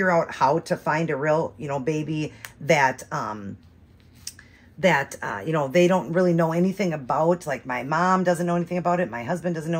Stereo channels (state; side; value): identical; both; correlation 1.00